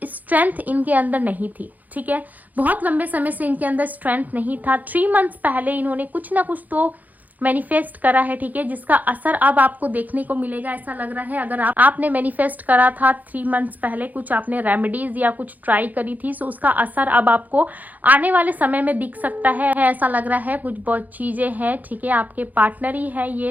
स्ट्रेंथ इनके अंदर नहीं थी। ठीक है, बहुत लंबे समय से इनके अंदर स्ट्रेंथ नहीं था। 3 मंथ्स पहले इन्होंने कुछ ना कुछ तो मैनिफेस्ट करा है। ठीक है, जिसका असर अब आपको देखने को मिलेगा, ऐसा लग रहा है। अगर आपने मैनिफेस्ट करा था 3 मंथ्स पहले, कुछ आपने रेमेडीज या कुछ ट्राई करी थी, सो उसका असर अब आपको आने वाले समय में दिख सकता है। ऐसा लग रहा है कुछ बहुत चीजें हैं। ठीक है, आपके पार्टनर ही है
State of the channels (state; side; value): late; left; 0.081 ms